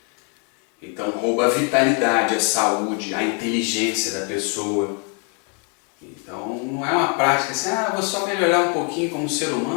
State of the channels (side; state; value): right; quieter; 37.1 dB